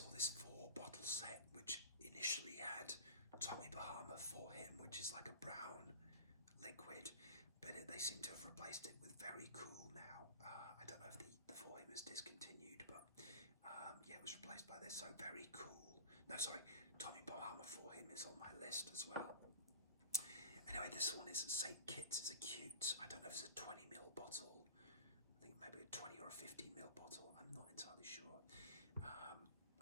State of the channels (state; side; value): inverted; both; correlation -0.37